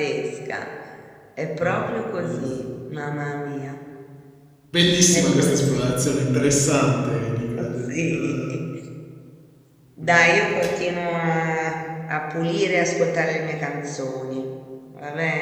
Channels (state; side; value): identical; both; correlation 1.00